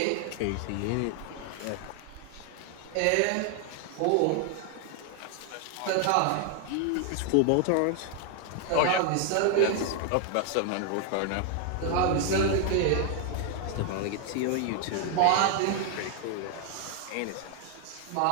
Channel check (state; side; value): different; both; correlation 0.00